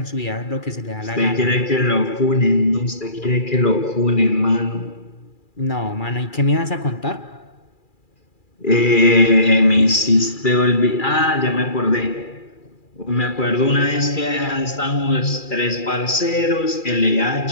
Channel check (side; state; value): right; late; 2.4 ms